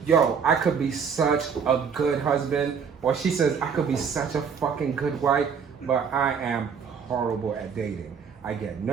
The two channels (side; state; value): left; quieter; 6.5 dB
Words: yo, I could be such a good husband. Or she says, I could be such a fucking good wife, but I am horrible at dating. I get